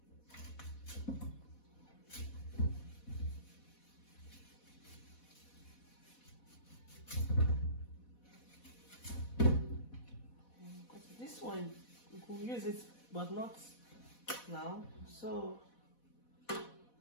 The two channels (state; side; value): late; right; 4.1 ms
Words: This one we can use it, but not now, so